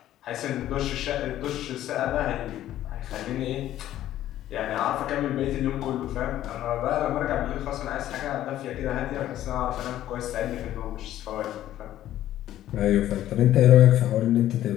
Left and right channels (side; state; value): right; quieter; 12.9 dB